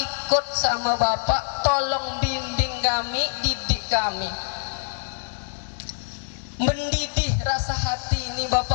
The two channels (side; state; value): right; silent; digital silence